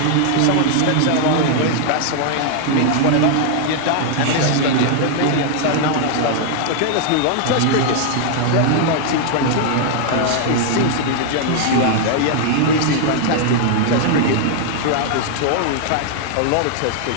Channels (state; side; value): different; both; correlation 0.00